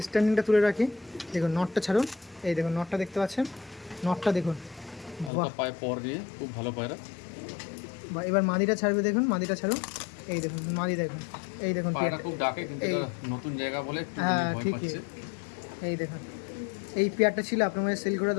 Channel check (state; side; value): drops out; right; at 5.3 s